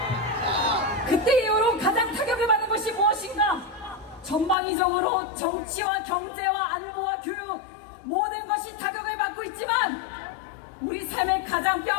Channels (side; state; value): right; drops out; at 4.5 s